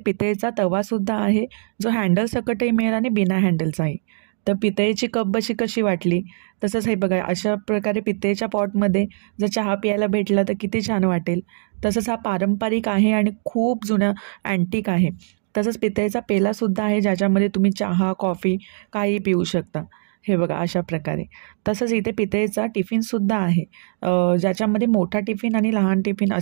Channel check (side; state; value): left; silent; digital silence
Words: तवासुद्धा आहे, जो हँडल सकटही मिळेल आणि बिना हँडलचाही। तर पितळेची कप बशी कशी वाटली, तसंच हे बघा अशा प्रकारे पितळेच्या पॉटमध्ये जर चहा प्यायला भेटला तर किती छान वाटेल। तसंच हा पारंपरिक आहे आणि खूप जुना अँटिक आहे। तसंच पितळेचा पेलासुद्धा आहे, ज्याच्यामध्ये तुम्ही चहा कॉफी काही पिऊ शकता। हे बघा अशा प्रकारे। तसंच इथे पितळेचा टिफिनसुद्धा आहे, ज्याच्यामध्ये मोठा टिफिन आणि लहान टिफिन